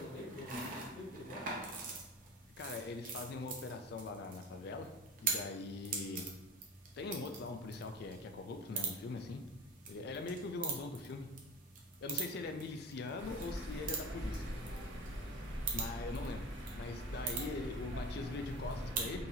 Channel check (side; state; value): both; normal; correlation 0.34